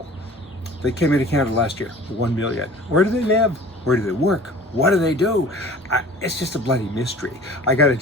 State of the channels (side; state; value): both; normal; correlation 0.45